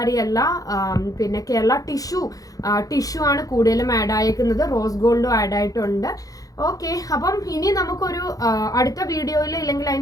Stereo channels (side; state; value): right; late; 0.17 ms